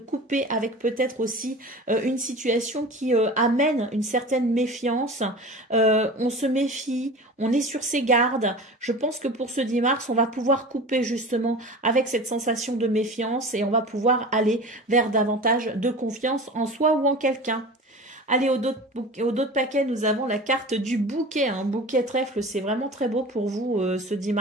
avec peut-être aussi une situation qui amène une certaine méfiance. On se méfie, on est sur ses gardes. Je pense que pour ce 10 mars, on va pouvoir couper justement avec cette sensation de méfiance et on va pouvoir aller vers davantage de confiance en soi ou en quelqu'un. Allez, au dos de paquet, nous avons la carte du bouquet. Un bouquet trèfle, c'est vraiment très beau pour vous ce 10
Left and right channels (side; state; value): both; normal; correlation 0.35